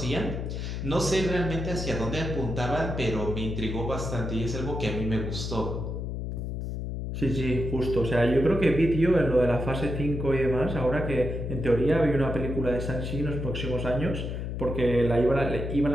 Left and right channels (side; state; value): left; noise; hum, 4 dB below the sound